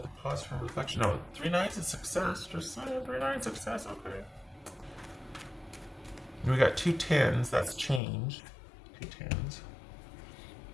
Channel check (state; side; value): drops out; right; at 8.0 s